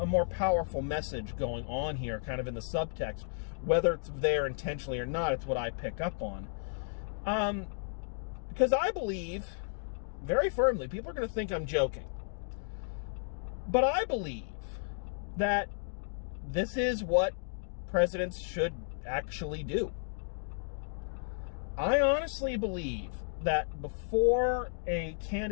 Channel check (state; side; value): silent; right; digital silence